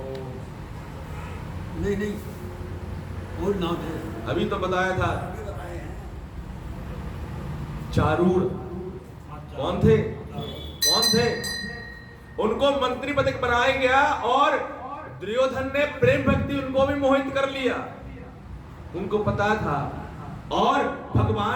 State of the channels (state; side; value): identical; both; correlation 1.00